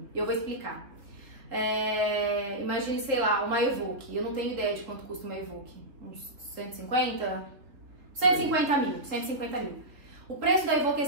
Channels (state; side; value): late; left; 3.4 ms